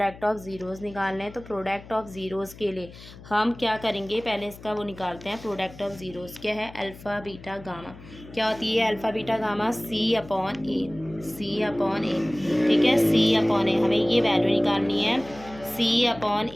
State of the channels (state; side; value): noise; left; hum, 18 dB below the sound